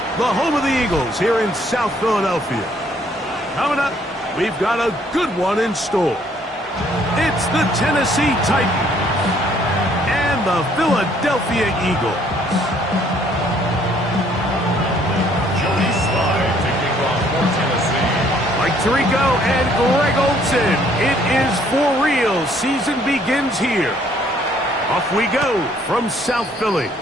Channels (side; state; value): both; normal; correlation 0.63